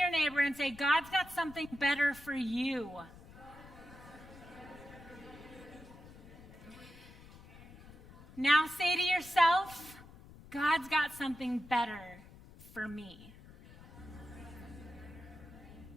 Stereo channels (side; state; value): left; noise; rumble, 19 dB below the sound